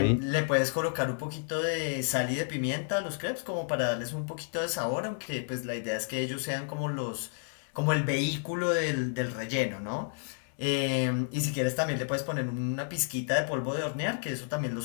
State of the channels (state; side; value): silent; right; 57 dB below the other